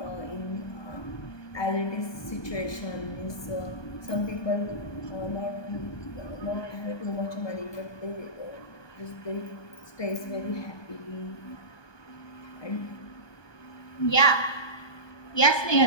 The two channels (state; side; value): late; right; 1.2 ms